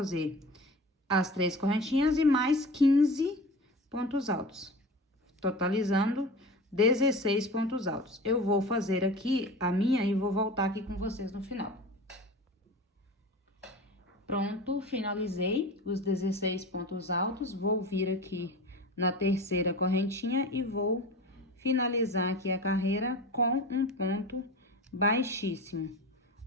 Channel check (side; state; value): both; normal; correlation 0.34